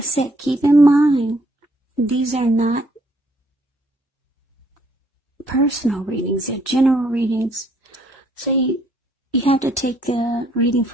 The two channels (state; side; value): normal; both; correlation 0.67